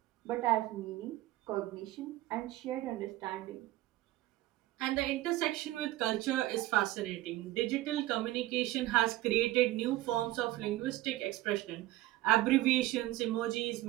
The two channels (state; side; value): quieter; left; 16.3 dB